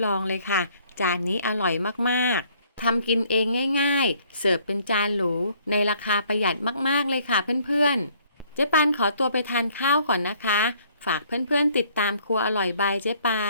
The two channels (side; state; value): both; inverted; correlation -0.62